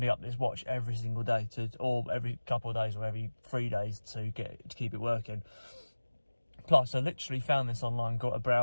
up this watch every single day or every couple of days or every 3 days to keep it working. Plus, I literally found this online, got a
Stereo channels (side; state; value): both; inverted; correlation -1.00